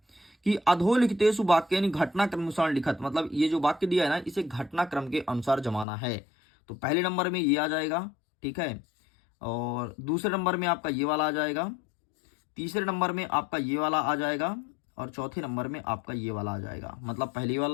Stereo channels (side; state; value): right; drops out; at 5.9 s